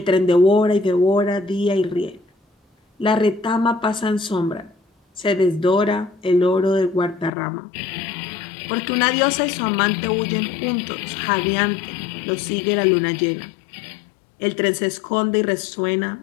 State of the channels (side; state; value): right; drops out; at 7.3 s